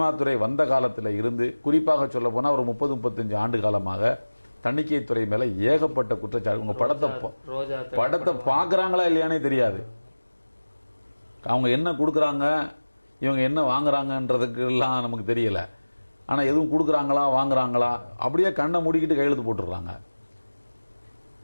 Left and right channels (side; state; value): both; inverted; correlation -1.00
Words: துறை வந்த காலத்தில் இருந்து, குறிப்பாக சொல்ல போனால் ஒரு 30-35 ஆண்டு காலமாக தணிக்கைத்துறை மேலே ஏகப்பட்ட குற்றச்சாட்டு. உங்கள் படத்தை பார்க்குறாங்களா இல்லையானே தெரியாது. அவங்க என்ன கொடுக்குறாங்க, இவங்க என்ன வாங்குறாங்கன்றதுக்கு எல்லாம் நமக்கு தெரியல. ஆனால் எதுவும் கொடுக்குறாங்களா வாங்குறாங்களா அப்படியே கண்ணை மூடிக்கிட்டு கையெழுத்து போட்டுடுறாங்க.